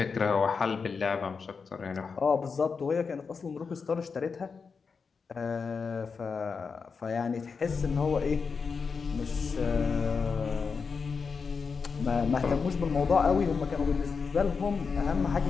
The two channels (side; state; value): right; quieter; 5.3 dB